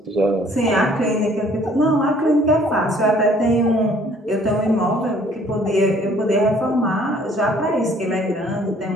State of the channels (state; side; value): normal; both; correlation 0.58